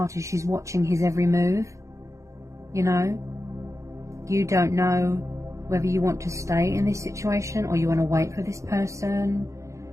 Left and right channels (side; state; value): left; late; 0.15 ms